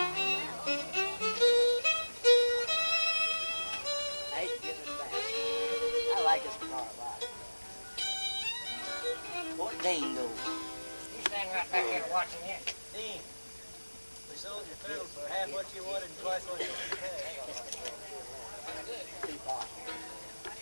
I hate to give this back. I like this car a lot. What Dean go? You standing right back there watching it. Dean, we sold your fiddle for half what you wanted and twice what you wanted to pay.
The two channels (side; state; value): both; inverted; correlation -1.00